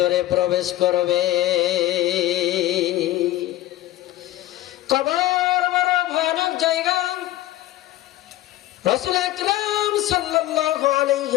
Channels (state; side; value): quieter; right; 15.0 dB